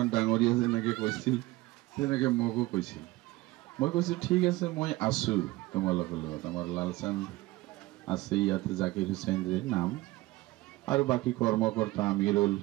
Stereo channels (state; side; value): quieter; left; 19.4 dB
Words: ডাঙৰীয়া যেনেকৈ কৈছিল তেনেকৈ মোকো কৈছিল। মই কৈছোঁ ঠিক আছে, মই আছোঁ তোমালোকৰ লগত। আমাৰ লালচান্দ আছে ইয়াতে, জাকিৰ হুছেইন যে নাম, আৰু বাকী কৰ্মকৰ্তা আমিৰুল,